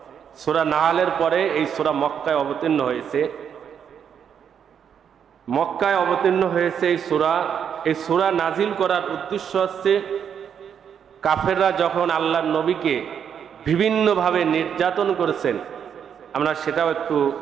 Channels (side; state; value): left; quieter; 8.0 dB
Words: সূরা নাহলের পরে এই সূরা মক্কায় অবতীর্ণ হয়েছে। মক্কায় অবতীর্ণ হয়েছে এই সূরা। এই সূরা নাজিল করার উদ্দেশ্য হচ্ছে কাফেররা যখন আল্লাহর নবীকে বিভিন্নভাবে নির্যাতন করেছেন, আমরা সেটাও একটু